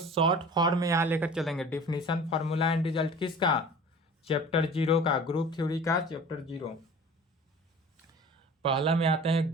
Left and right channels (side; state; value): both; normal; correlation 0.42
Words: फॉर्म में यहां लेकर चलेंगे। डिफिनीशन, फार्मूला एंड रिजल्ट किसका? चैप्टर 0 का, ग्रुप थ्योरी का चैप्टर 0। पहला में आते हैं